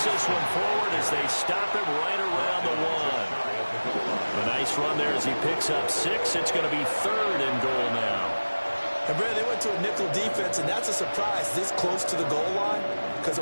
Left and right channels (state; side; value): inverted; both; correlation -1.00